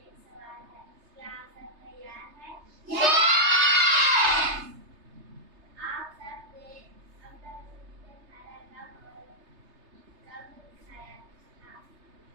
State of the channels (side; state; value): left; late; 3.3 ms